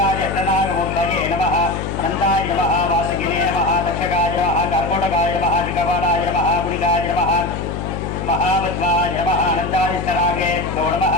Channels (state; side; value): noise; left; hum, 5 dB below the sound